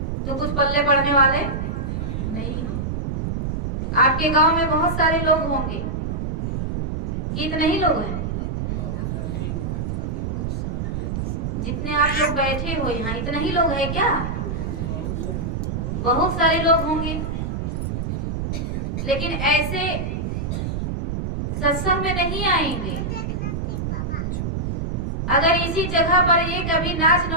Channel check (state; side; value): noise; right; rumble, 2 dB below the sound